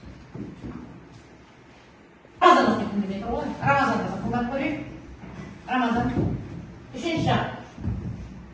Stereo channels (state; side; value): identical; both; correlation 1.00